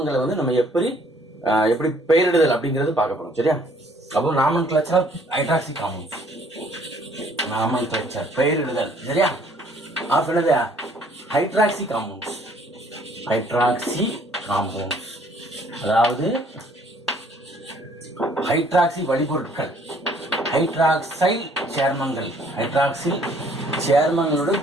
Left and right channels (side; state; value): both; normal; correlation 0.60